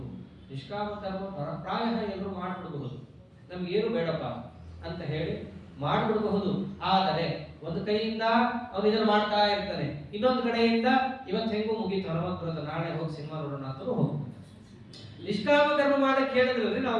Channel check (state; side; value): identical; both; correlation 1.00